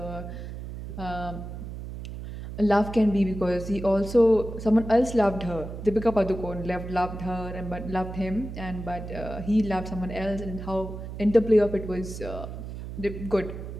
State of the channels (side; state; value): right; noise; hum, 9 dB below the sound